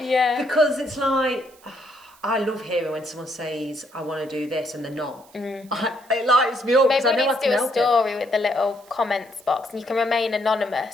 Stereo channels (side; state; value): right; noise; hiss, 27 dB below the sound